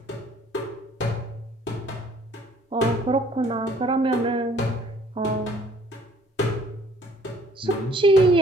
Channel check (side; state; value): both; normal; correlation 0.58